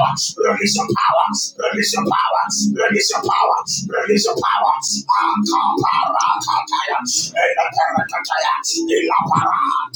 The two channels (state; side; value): identical; both; correlation 1.00